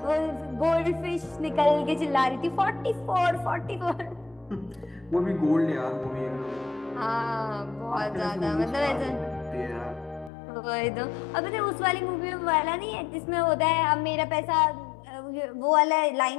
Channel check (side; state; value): right; drops out; at 10.3 s